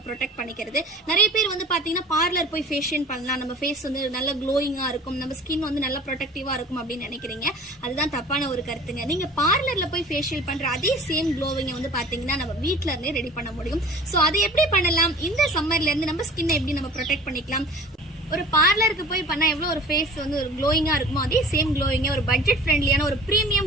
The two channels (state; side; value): normal; both; correlation 0.44